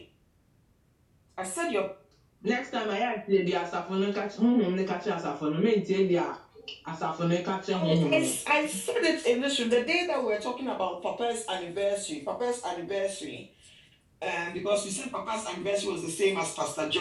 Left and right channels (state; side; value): identical; both; correlation 1.00